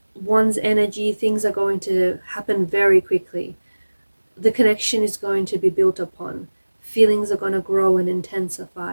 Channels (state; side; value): inverted; both; correlation -1.00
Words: Wands energy, things are going to happen very quickly. The connection is going to be built upon. Feelings are going to grow and